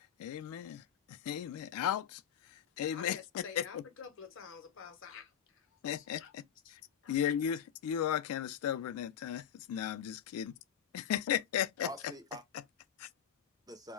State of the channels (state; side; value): quieter; right; 9.3 dB